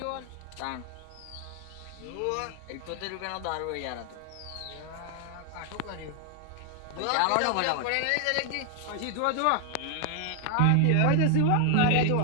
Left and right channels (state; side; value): different; both; correlation 0.00